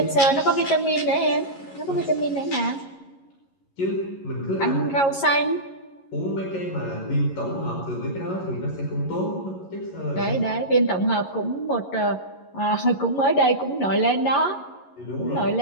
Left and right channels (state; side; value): late; right; 11 ms